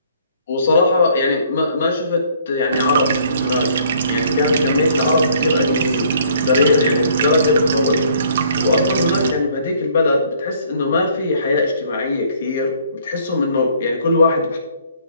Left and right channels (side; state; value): both; inverted; correlation -0.61